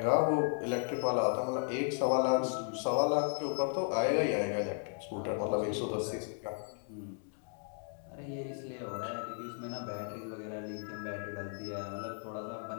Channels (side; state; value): right; silent; 54 dB below the other